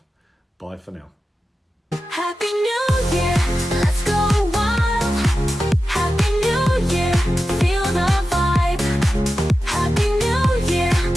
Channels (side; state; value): both; normal; correlation 0.92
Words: Bye for now. Happy New Year.